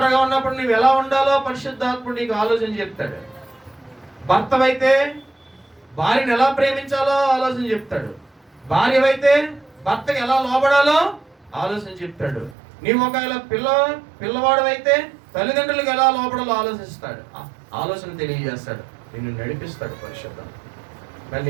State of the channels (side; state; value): left; drops out; at 12.6 s